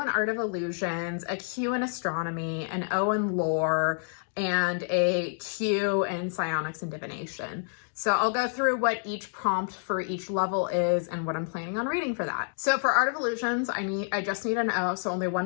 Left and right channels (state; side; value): silent; right; 59 dB below the other